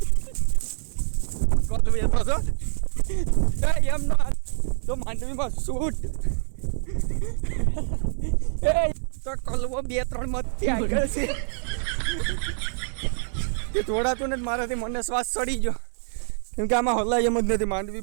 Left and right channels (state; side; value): silent; left; digital silence